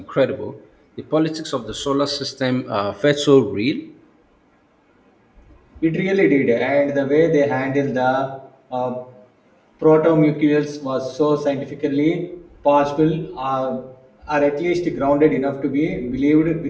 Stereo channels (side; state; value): both; identical; correlation 1.00